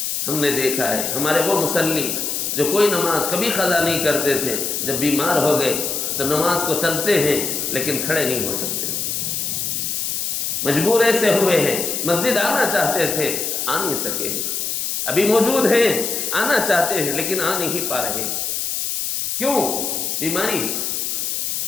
ہم نے دیکھا ہے ہمارے وہ مصلی جو کوئی نماز کبھی قضا نہیں کرتے تھے، جب بیمار ہو گئے تو نماز کو ترسے ہیں لیکن کھڑے نہیں ہو سکتے، مجبور ایسے ہوئے ہیں مسجد آنا چاہتے تھے آ نہیں سکے، ابھی موجود ہیں آنا چاہتے ہیں لیکن آ نہیں پا رہے۔ کیوں؟ بیماری،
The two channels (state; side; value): noise; left; hiss, 1 dB below the sound